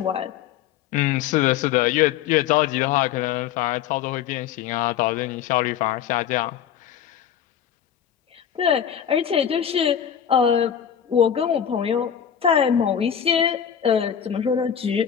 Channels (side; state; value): right; quieter; 9.0 dB